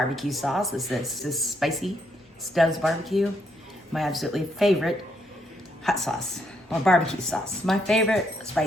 sauce. This is spicy Stubbs barbecue, my absolutely favorite hot sauce, or barbecue sauce. My favorite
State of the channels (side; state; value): both; normal; correlation 0.75